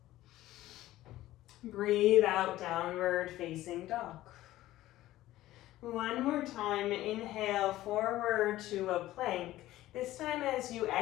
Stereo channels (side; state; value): right; quieter; 15.4 dB